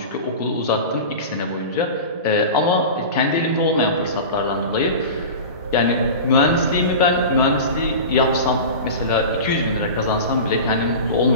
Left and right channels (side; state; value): both; inverted; correlation -0.31